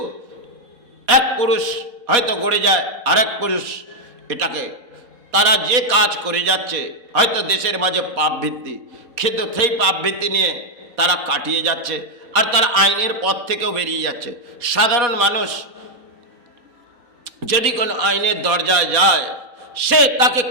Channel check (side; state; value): left; late; 4.2 ms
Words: এক পুরুষ হয়তো গড়ে যায়, আরেক পুরুষ এটাকে, তারা যে কাজ করে যাচ্ছে হয়তো দেশের মাঝে পাপ ভিত্তি, কিন্তু সেই পাপ ভিত্তি নিয়ে তারা কাটিয়ে যাচ্ছে, আর তারা আইনের পথ থেকেও বেরিয়ে যাচ্ছে। সাধারণ মানুষ যদি কোনো আইনের দরজায় যায়, সে তাকে